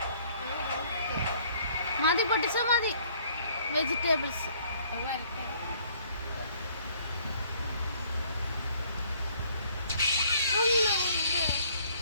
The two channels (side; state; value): both; inverted; correlation -0.61